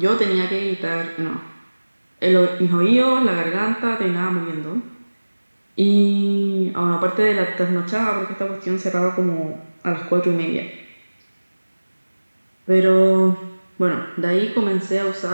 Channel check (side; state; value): both; inverted; correlation -1.00